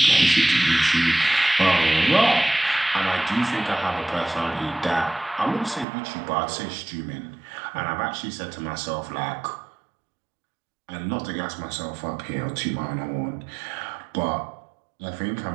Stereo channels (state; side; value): drops out; left; at 5.9 s